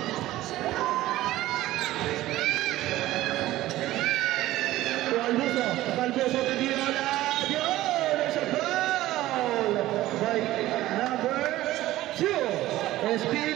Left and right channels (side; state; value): left; quieter; 15.8 dB